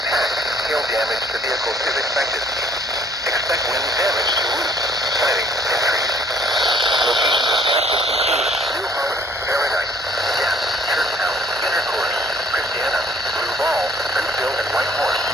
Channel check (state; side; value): normal; both; correlation 0.60